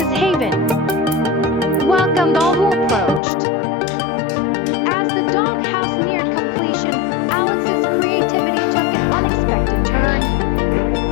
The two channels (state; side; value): drops out; right; at 3.2 s